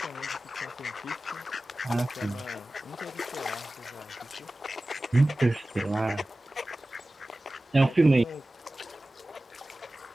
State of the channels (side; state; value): both; normal; correlation 0.96